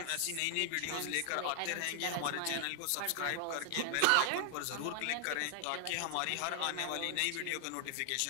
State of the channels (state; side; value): different; both; correlation 0.00